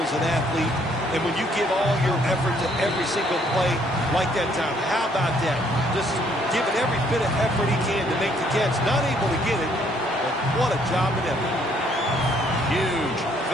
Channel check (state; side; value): normal; both; correlation 0.66